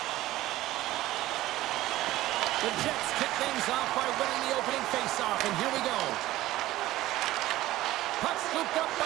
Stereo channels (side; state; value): left; quieter; 16.0 dB